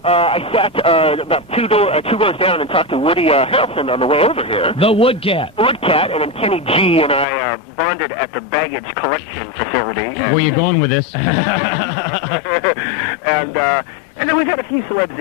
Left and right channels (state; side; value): drops out; right; at 7.2 s